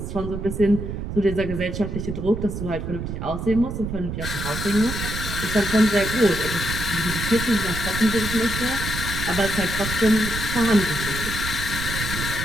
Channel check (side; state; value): right; noise; rumble, 5 dB below the sound